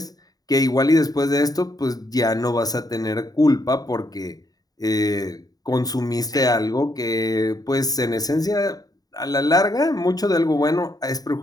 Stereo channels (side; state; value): right; late; 0.18 ms